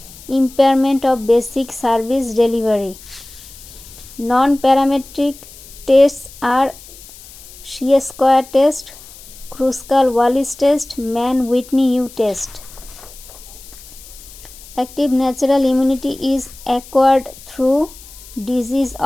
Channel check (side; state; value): left; noise; hiss, 19 dB below the sound